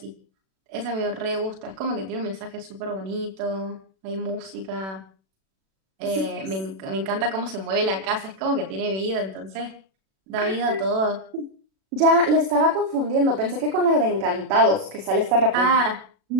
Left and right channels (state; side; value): late; left; 36 ms